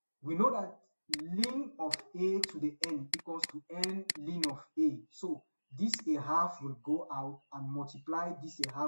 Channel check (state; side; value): inverted; both; correlation -1.00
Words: We know that ln of a to the n equals to n ln of a. So this a half will go out and multiply this a